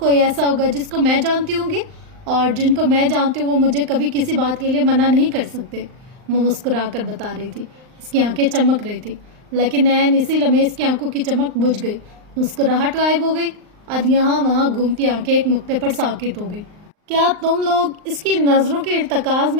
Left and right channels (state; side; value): late; left; 39 ms